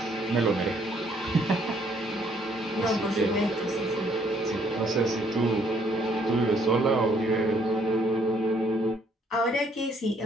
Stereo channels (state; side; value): normal; both; correlation 0.67